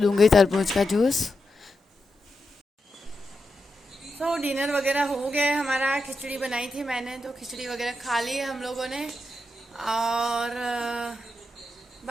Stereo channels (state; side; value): normal; both; correlation 0.87